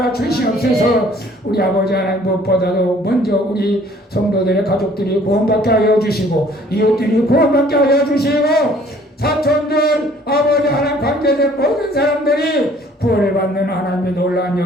주시옵소서. 우리 아버지 하나님, 무엇보다도 먼저 우리 성도들의 가족들이 구원받게 하여 주시고 이웃들이 구원받게 하여 주시고 사촌들 아버지 하나님 관계된 모든 사람들이 구원을 받는 하나님의 놀라운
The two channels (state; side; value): normal; both; correlation 0.56